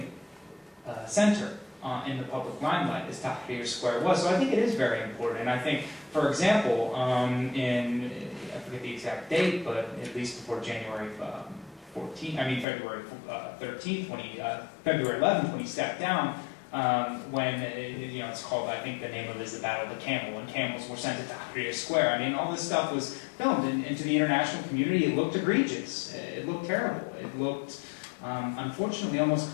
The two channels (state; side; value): drops out; right; at 12.7 s